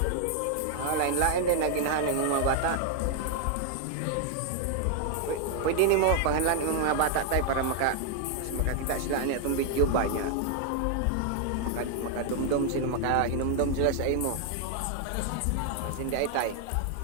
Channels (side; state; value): both; different; correlation 0.00